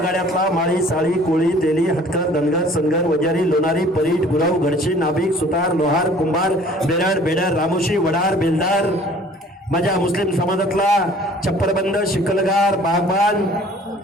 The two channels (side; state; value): both; normal; correlation 0.52